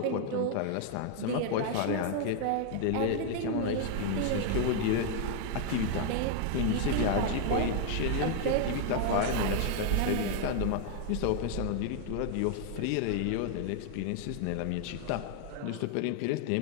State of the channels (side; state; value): both; different; correlation 0.00